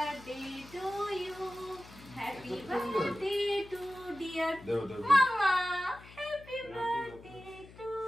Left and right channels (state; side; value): noise; left; hum, 20 dB below the sound